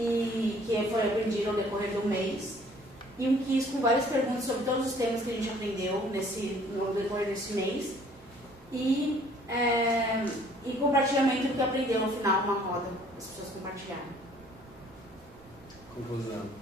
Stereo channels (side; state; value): both; normal; correlation 0.57